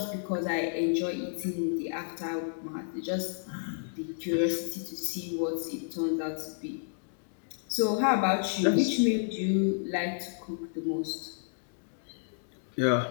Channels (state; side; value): silent; right; digital silence